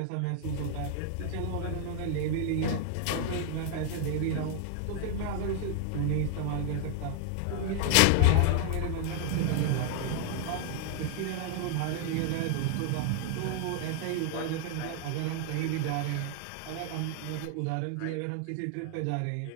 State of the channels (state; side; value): different; both; correlation 0.00